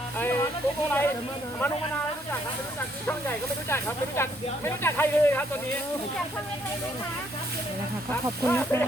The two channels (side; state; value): both; normal; correlation 0.70